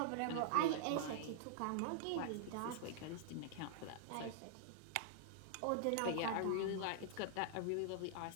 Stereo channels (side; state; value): both; different; correlation -0.01